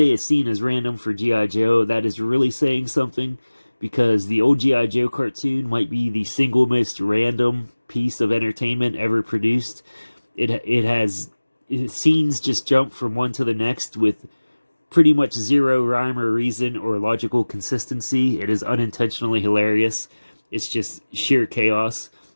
a scene is random for G.I. Joe, that is really saying something, because the old G.I. Joe cartoon might be the single most random piece of entertainment ever produced. Scenes just jump from one to the next with pretty much zero rhyme or reason or logical consistency. It is unintentionally hilarious. It's just sheer chaos.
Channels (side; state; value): both; inverted; correlation -1.00